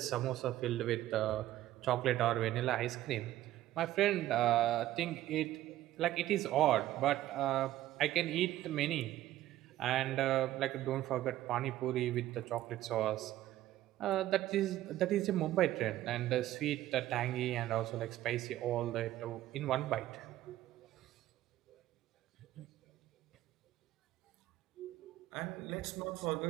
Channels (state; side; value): quieter; left; 14.2 dB